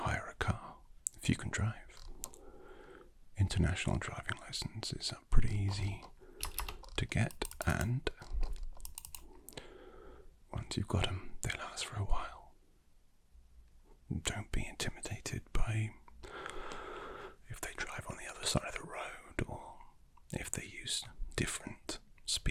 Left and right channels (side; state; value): both; identical; correlation 1.00